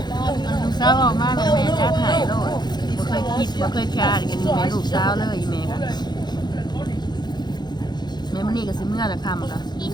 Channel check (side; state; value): right; late; 0.21 ms